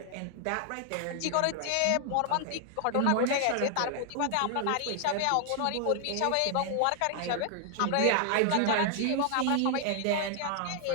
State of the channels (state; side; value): different; both; correlation 0.00